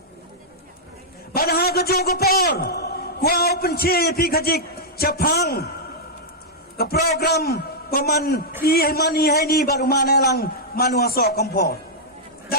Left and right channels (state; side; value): normal; both; correlation -0.07